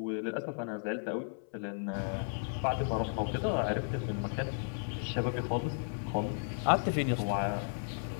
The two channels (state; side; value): silent; right; 55 dB below the other